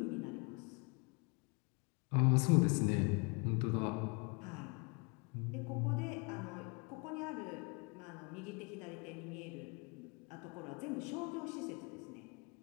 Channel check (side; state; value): right; quieter; 31.3 dB